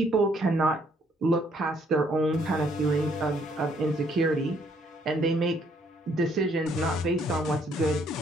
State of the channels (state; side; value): normal; both; correlation 0.67